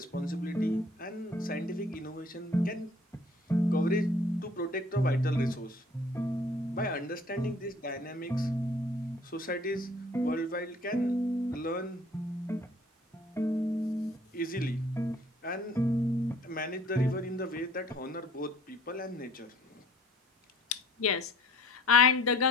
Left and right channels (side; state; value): both; normal; correlation 0.55